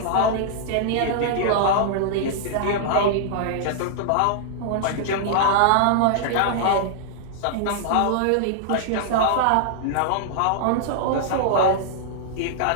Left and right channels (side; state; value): both; different; correlation -0.01